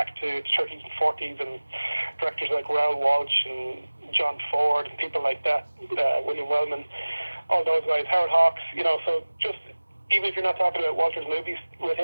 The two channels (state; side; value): inverted; both; correlation -1.00